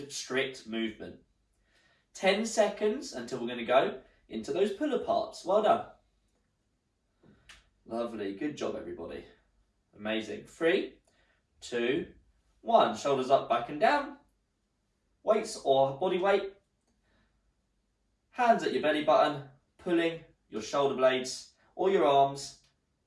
strict movement. 10 seconds until we're going to go into those pull aparts. Well done. Lovely. Good job, everybody. Amazing. 3, 2, 1. Shoulders up, back and down. Weights or body weight. Hands at your belly button, pulling your shoulder blades or your arms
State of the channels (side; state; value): both; identical; correlation 1.00